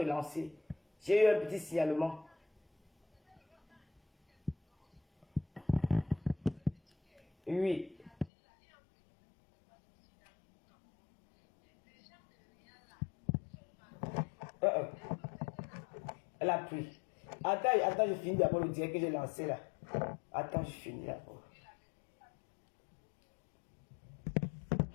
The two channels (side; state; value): right; drops out; at 8.3 s